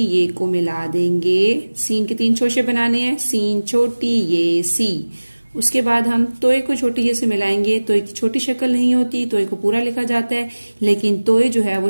को मिला देंगे। सीन के 3 शोशे बनाने हैं, सीन छोटी ये सी। उसके बाद हम तोए को छोटी ये से मिलाएंगे। तोए की छोटी शक्ल नहीं होती, तोए को पूरा लिखा जाता है, लेकिन तोए जो है वो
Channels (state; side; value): inverted; both; correlation -1.00